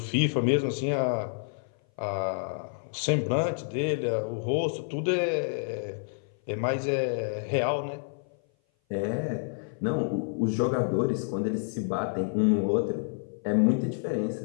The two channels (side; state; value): right; silent; 56 dB below the other